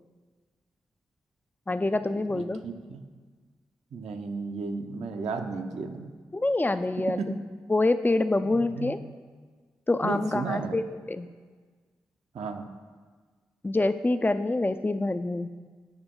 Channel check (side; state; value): both; normal; correlation 0.92